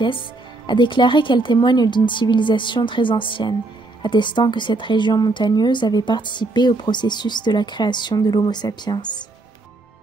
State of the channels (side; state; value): left; quieter; 3.1 dB